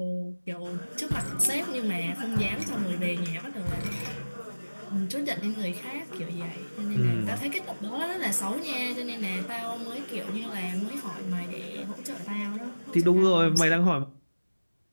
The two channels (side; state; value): both; inverted; correlation -1.00